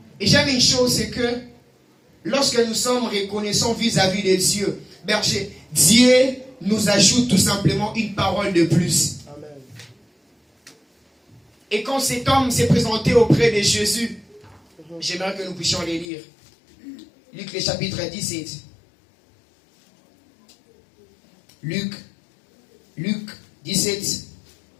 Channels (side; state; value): right; drops out; at 16.1 s